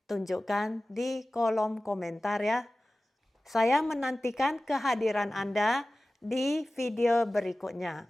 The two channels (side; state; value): both; normal; correlation 0.96